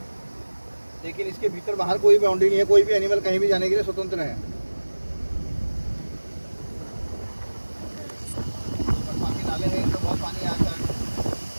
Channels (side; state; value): both; inverted; correlation -1.00